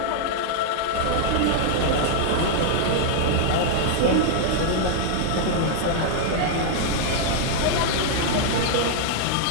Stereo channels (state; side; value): different; both; correlation -0.01